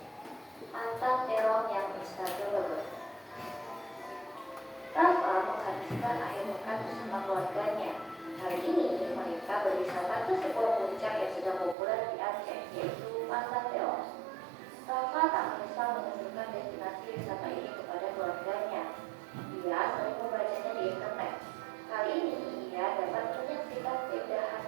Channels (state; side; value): drops out; left; at 11.8 s